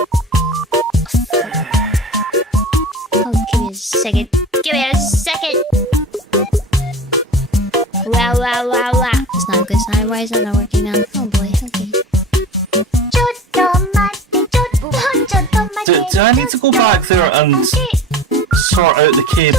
Oh, give me a second. Give me a second. Wow. It's not a good sign. Why is that not working now? Oh boy, okay. Do I need to go back there and sort out the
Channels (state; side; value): normal; both; correlation 0.36